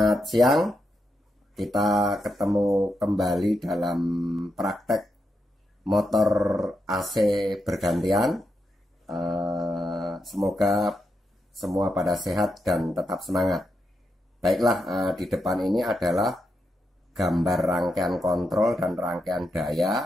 siang, kita ketemu kembali dalam praktek motor AC bergantian. Semoga semua pada sehat dan tetap semangat. Baiklah, di depan ini adalah gambar rangkaian kontrol dan rangkaian daya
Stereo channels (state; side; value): normal; both; correlation 0.84